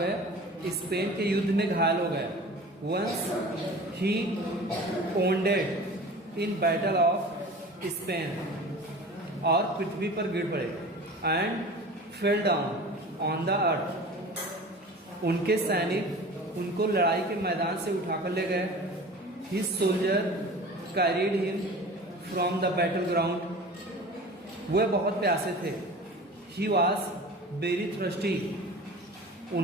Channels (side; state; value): both; normal; correlation 0.38